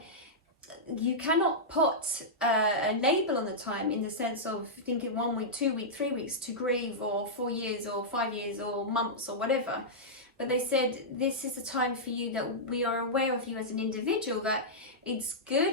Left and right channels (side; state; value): both; normal; correlation -0.10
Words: you cannot put a label on the time, in the sense of thinking 1 week, 2 weeks, 3 weeks to grieve, or 4 years, or 5 years, or months, or whatever. But they said this is a time for you that we are aware of you as an individual, that it's